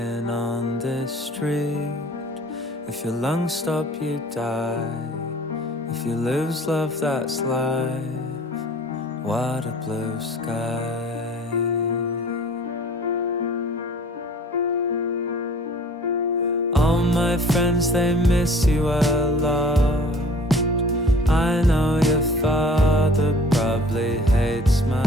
on this street. If your lungs stop, you die. If you lose love, that's life. What a blue sky. All my friends, they miss you a lot. I know your father probably hates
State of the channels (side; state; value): both; normal; correlation 0.49